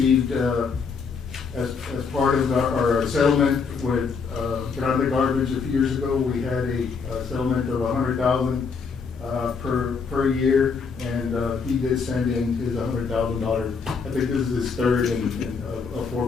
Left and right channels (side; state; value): right; quieter; 5.4 dB